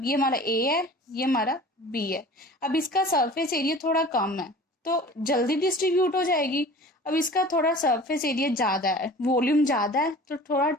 ये हमारा A है, ये हमारा B है। अब इसका सरफेस एरिया थोड़ा कम है तो जल्दी डिस्ट्रीब्यूट हो जाएगी। अब इसका थोड़ा सरफेस एरिया ज्यादा है, वॉल्यूम ज्यादा है, तो थोड़ा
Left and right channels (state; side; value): normal; both; correlation 0.42